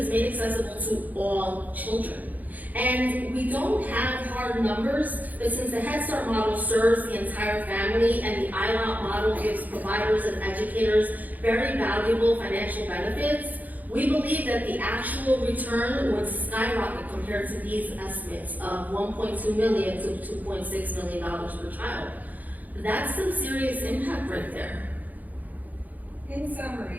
made accessible to all children. And we don't have hard numbers, but since the Head Start model serves the entire family and the ILOP model gives providers and educators very valuable financial benefits, we believe that the actual return would skyrocket compared to these estimates of $1.2 million to $2.6 million per child. That's some serious impact right there. In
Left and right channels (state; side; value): late; left; 0.081 ms